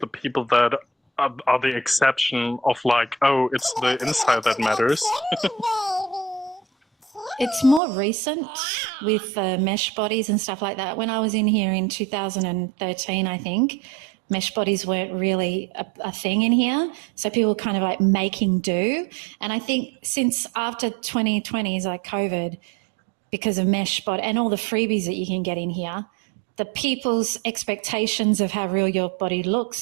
people that are the exception of it's the inside that matters. It's more recent with mesh bodies and stuff like that. When I was in here in 2013, I think, mesh bodies weren't really a thing in here. So people were kind of making do. And I think since after 2020s, COVID, because of mesh body and all the freebies that you can get in here, the people's expectations of how real your body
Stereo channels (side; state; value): left; drops out; at 7.8 s